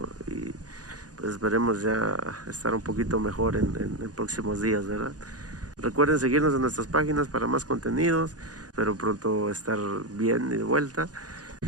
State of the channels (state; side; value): late; left; 0.68 ms